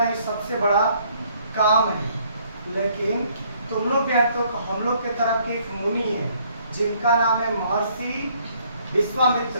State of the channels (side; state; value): both; inverted; correlation -0.64